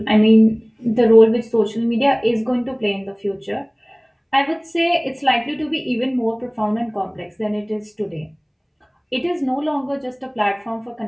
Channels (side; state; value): both; identical; correlation 1.00